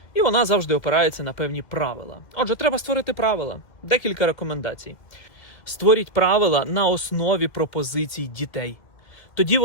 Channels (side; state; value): right; late; 2.1 ms